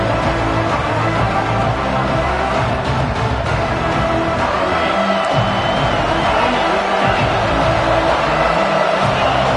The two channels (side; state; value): both; identical; correlation 1.00